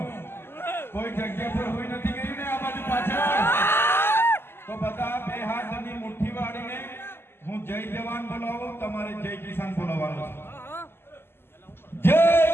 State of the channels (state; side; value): late; right; 0.11 ms